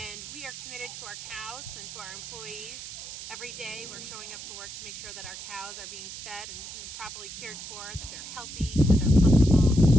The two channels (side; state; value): right; noise; hiss, 10 dB below the sound